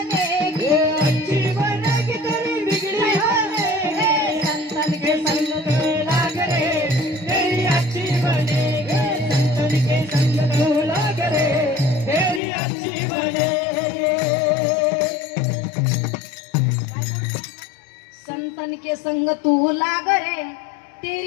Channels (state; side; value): drops out; right; at 12.4 s